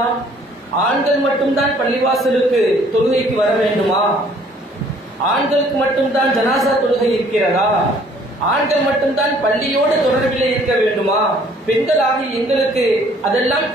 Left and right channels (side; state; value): both; normal; correlation 0.59